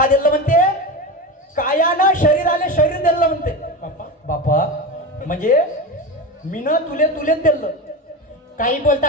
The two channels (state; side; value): normal; both; correlation 0.22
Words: दिलं म्हणते, कायानं शरीराले शरीर दिलं म्हणते. बाप्पा बापा म्हणजे मीनं तुलेच दिलं. काही